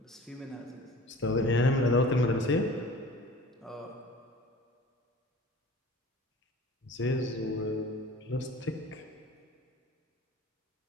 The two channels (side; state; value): both; normal; correlation 0.43